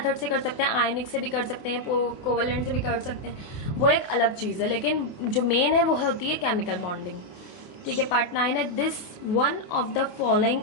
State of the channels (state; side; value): late; right; 27 ms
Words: से कर सकते हैं, आयनिक से भी कर सकते हैं, कोवेलेंट से भी कर सकते हैं, वो एक अलग चीज़ है, लेकिन जो मेन है वो होती है केमिकल बॉन्डिंग। ठीक है, पार्ट 9 है, this one of the following